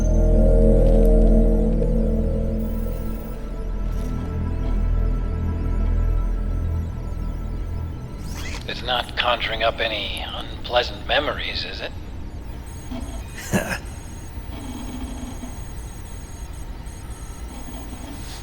It's not conjuring up any unpleasant memories, is it?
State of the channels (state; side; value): identical; both; correlation 1.00